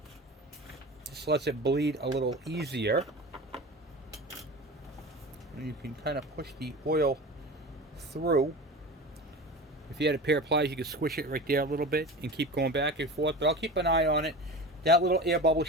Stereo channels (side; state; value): both; normal; correlation 0.31